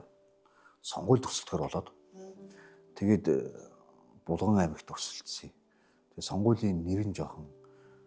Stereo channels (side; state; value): both; identical; correlation 1.00